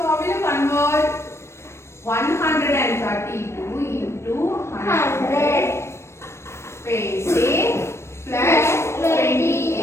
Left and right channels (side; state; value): right; late; 0.13 ms